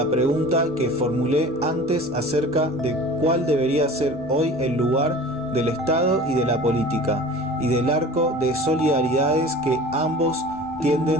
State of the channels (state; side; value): normal; both; correlation 0.40